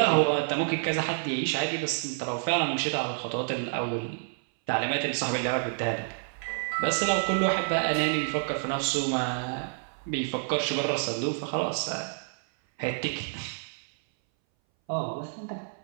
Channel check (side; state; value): left; silent; 59 dB below the other